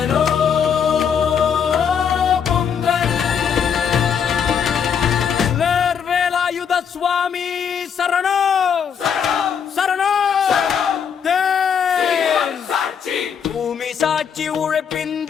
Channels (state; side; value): quieter; right; 7.4 dB